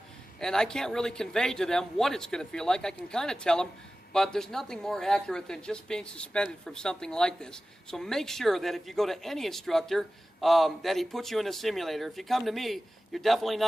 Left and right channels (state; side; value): normal; both; correlation 0.96